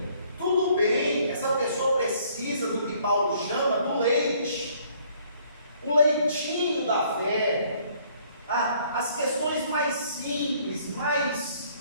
Tudo bem, essa pessoa precisa do que Paulo chama do leite, o leitinho da fé, as questões mais simples, mais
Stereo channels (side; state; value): both; inverted; correlation -0.62